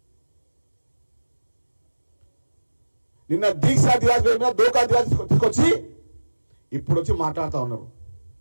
నిన్న దీక్షా దివాస్ మీద దోకా దివాస్ తీసుకొచ్చి ఇప్పుడు వచ్చి మాట్లాడుతూ ఉన్నారు.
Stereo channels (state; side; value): inverted; both; correlation -1.00